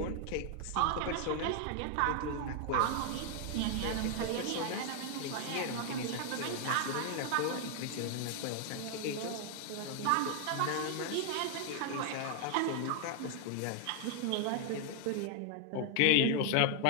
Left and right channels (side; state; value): both; different; correlation 0.00